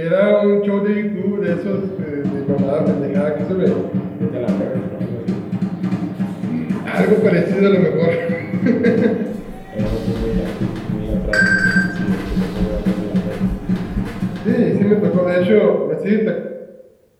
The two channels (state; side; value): identical; both; correlation 1.00